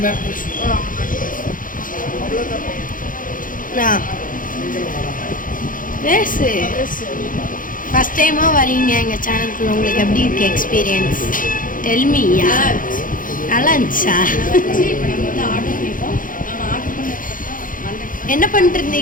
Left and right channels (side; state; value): right; late; 0.40 ms